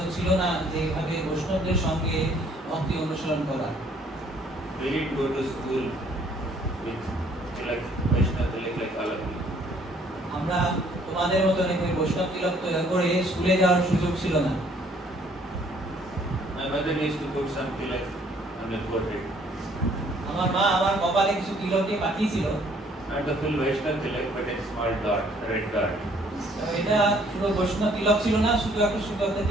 ছিল না যে এইভাবে বৈষ্ণবদের সঙ্গে ভক্তি অনুসরণ করা। We did go to school with like Vaishnava Tilak like all of you. আমরা তোমাদের মতো ওই বৈষ্ণব তিলক করে স্কুলে যাওয়ার সুযোগ ছিল না। My mother used to put some tilak on the forehead. আমার মা আমার কপালে কিছু তিলক দিয়ে পাঠিয়েছিল। Not the full Vaishnava tilak, but a small dot, a red dot. এটা শুধু বৈষ্ণব তিলক ছিল না, শুধু একটা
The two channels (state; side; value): normal; both; correlation 0.62